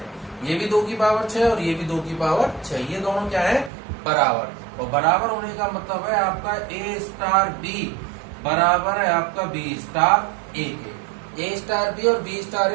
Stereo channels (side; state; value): left; drops out; at 3.7 s